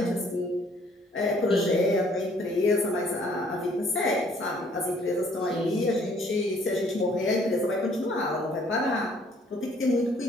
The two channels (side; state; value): both; normal; correlation 0.61